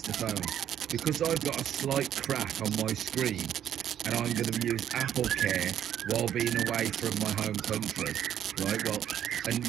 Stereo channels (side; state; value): left; quieter; 10.2 dB